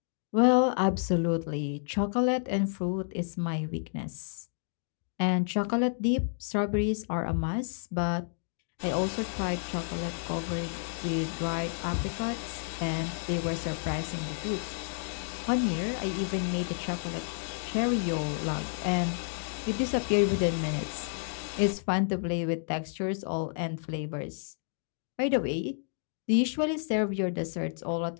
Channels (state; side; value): silent; right; digital silence